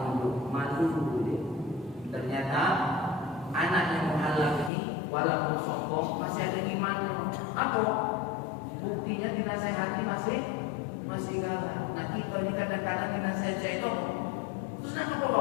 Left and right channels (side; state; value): right; drops out; at 4.7 s